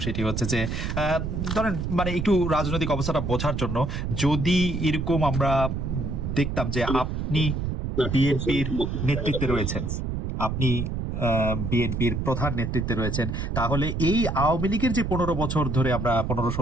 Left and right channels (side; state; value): right; noise; rumble, 3 dB below the sound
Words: সেটি হচ্ছে যে ধরেন মানে একটু রাজনৈতিক অবস্থাটা বোঝার জন্য, যদি এরকম আমরা দেখতাম যে আপনি বিএনপির নেতৃত্বে রয়েছেন, আপনি বিএনপির প্রধান নেতৃত্বে রয়েছেন, তাহলে এই আওয়ামী লীগের যে 15 বছর ধরে আমরা